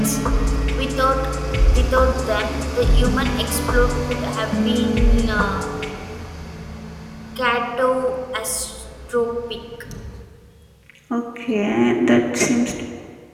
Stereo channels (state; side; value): identical; both; correlation 1.00